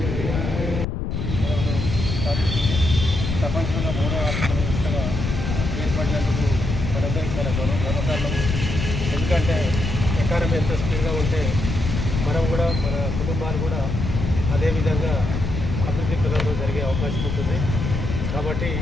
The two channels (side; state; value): left; noise; rumble, 3 dB below the sound